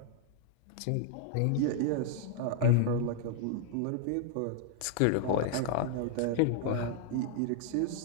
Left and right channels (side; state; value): both; different; correlation 0.00